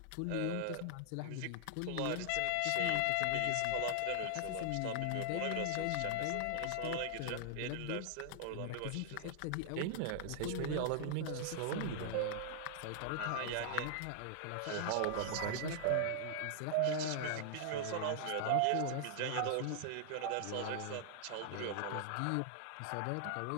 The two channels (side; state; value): both; different; correlation -0.01